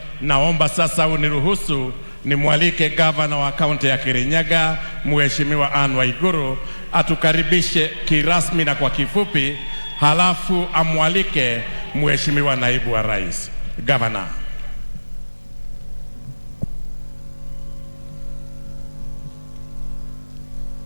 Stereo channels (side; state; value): both; inverted; correlation -1.00